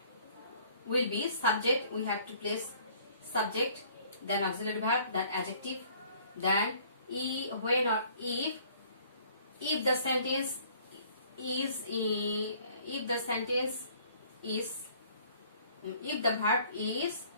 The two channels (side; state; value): both; inverted; correlation -0.57